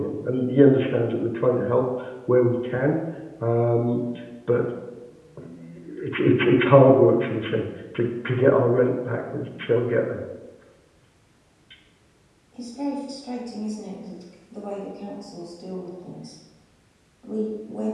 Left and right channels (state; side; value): identical; both; correlation 1.00